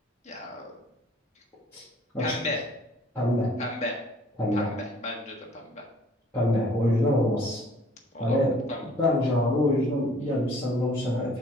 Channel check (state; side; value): normal; both; correlation 0.55